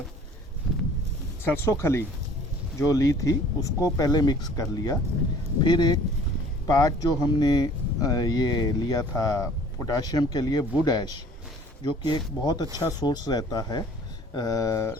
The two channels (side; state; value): both; normal; correlation 0.52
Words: सरसों खली जो ली थी उसको पहले मिक्स कर लिया। फिर एक पार्ट जो हमने ये लिया था पोटाशियम के लिए वुड ऐश, जो कि एक बहुत अच्छा सोर्स रहता है